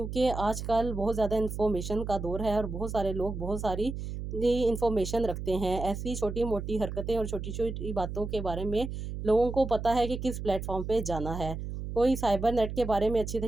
آج کل بہت زیادہ انفارمیشن کا دور ہے، اور بہت سارے لوگ بہت ساری انفارمیشن رکھتے ہیں، ایسی چھوٹی موٹی حرکتیں اور چھوٹی چھوٹی باتوں کے بارے میں لوگوں کو پتہ ہے کہ کس پلیٹ فارم پہ جانا ہے۔ کوئی سائبر نیٹ کے بارے میں اچھی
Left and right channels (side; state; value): right; noise; hum, 6 dB below the sound